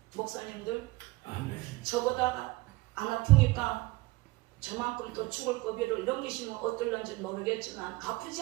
목사님들 아멘. 저보다가 안 아프니까 저만큼 또 죽을 고비를 넘기시면 어떨런지 모르겠지만 아프지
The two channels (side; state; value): left; quieter; 21.5 dB